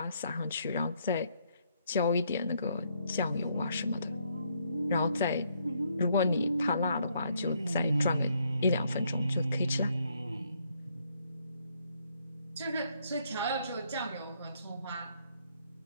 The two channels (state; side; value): inverted; both; correlation -0.72